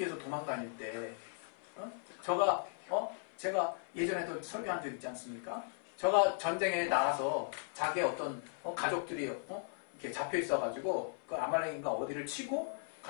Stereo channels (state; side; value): silent; right; 53 dB below the other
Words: 도망다닐 때 제가 예전에도 설교한 적 있지 않습니까? 저가 전쟁에 나가서 자기의 어떤 가족들이 이렇게 잡혀 있어가지고 그 아말렉인가 어디를 치고